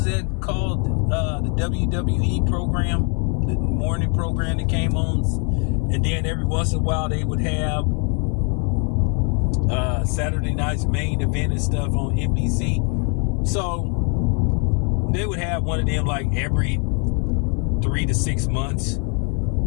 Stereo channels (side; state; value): right; quieter; 37.9 dB